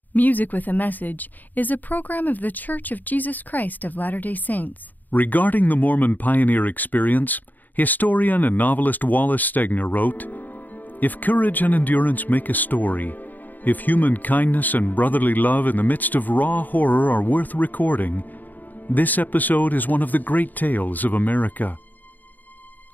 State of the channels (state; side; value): late; right; 0.084 ms